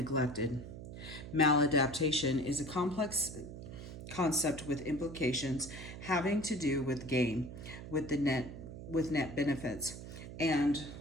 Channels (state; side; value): noise; right; hum, 11 dB below the sound